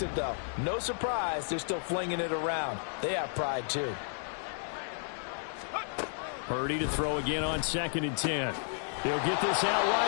it, though, no surprise, they're still flinging it around. They have pride, too. Purdy to throw again on 2nd and 10. He'll get this out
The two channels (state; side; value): silent; right; digital silence